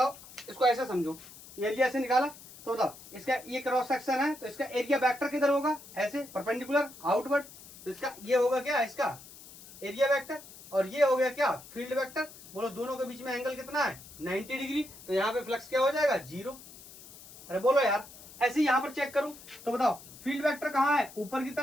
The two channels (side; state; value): left; noise; hiss, 18 dB below the sound